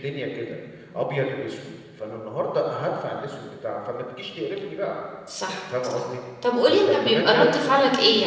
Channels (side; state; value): both; identical; correlation 1.00